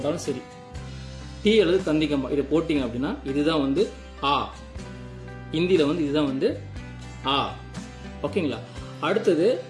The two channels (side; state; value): both; identical; correlation 1.00